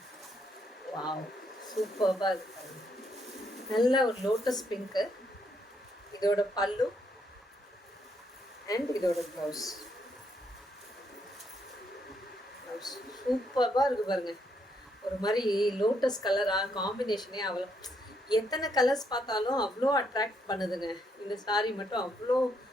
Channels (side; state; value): both; normal; correlation 0.74